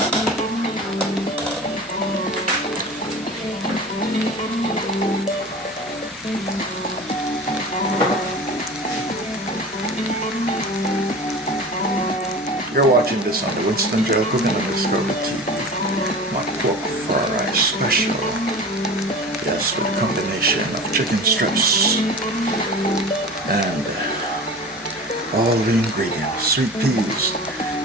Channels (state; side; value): normal; both; correlation 0.35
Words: You're watching this on the Winston GeL Cooking and Discovery TV. My pork fried rice special. Yes, with a combination of chicken strips and all the ingredients. Sweet peas,